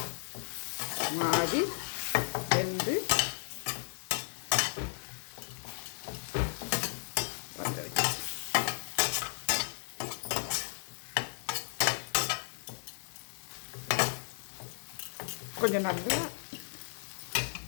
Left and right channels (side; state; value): right; silent; digital silence